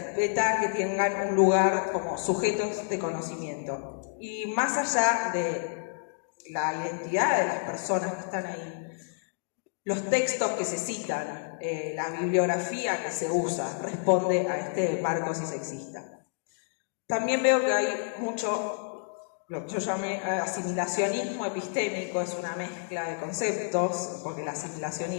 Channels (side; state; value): right; silent; digital silence